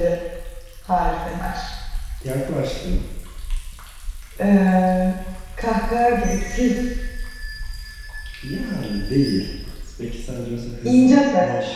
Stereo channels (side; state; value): both; identical; correlation 1.00